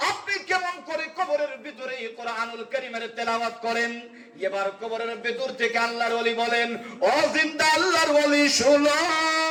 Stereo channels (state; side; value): identical; both; correlation 1.00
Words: আপনি কেমন করে কবরের ভিতরে কোরআনুল কারীমের তেলাওয়াত করেন? এবার কবরের ভিতর থেকে আল্লাহর ওলি বলেন, ও জিন্দা আল্লাহর ওলি শুনো,